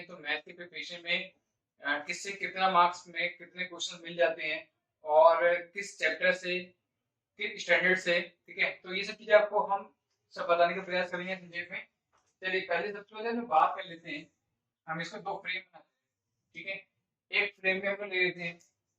तो मैथ के प्रिपरेशन में किससे कितना मार्क्स में कितने क्वेश्चन मिल जाते हैं और किस चैप्टर से किस स्टैंडर्ड से, ठीक है। तो ये सब चीजें आपको हम सब बताने का प्रयास करेंगे संक्षेप में। चलिए, पहले सबसे पहले हम बात कर लेते हैं। हम इसको दो फ्रेम बनाते हैं, ठीक है। एक फ्रेम में हम लोग ले लेते हैं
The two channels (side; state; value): both; identical; correlation 1.00